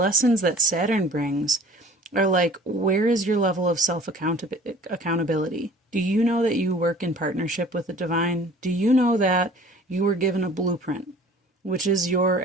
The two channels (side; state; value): both; normal; correlation 0.48